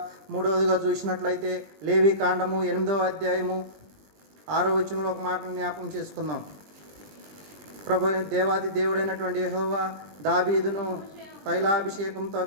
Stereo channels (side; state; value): left; late; 20 ms